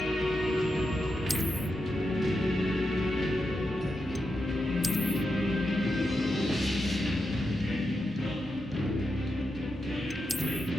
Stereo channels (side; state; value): both; normal; correlation 0.87